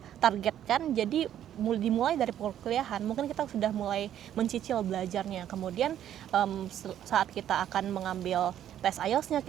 targetkan. Jadi dimulai dari perkuliahan, mungkin kita sudah mulai mencicil belajarnya. Kemudian saat kita akan mengambil tes IELTS-nya,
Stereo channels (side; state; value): left; quieter; 10.8 dB